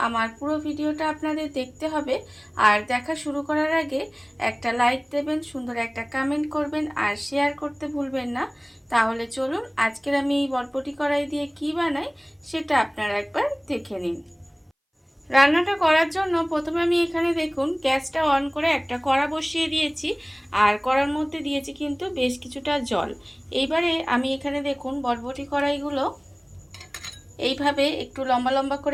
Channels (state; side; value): identical; both; correlation 1.00